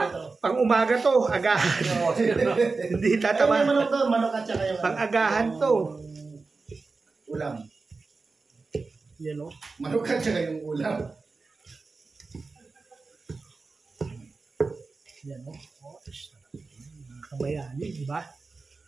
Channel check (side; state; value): left; quieter; 4.1 dB